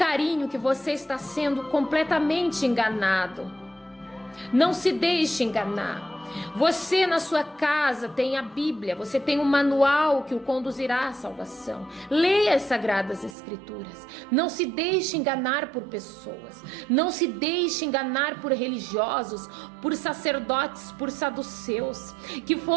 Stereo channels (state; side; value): drops out; left; at 13.4 s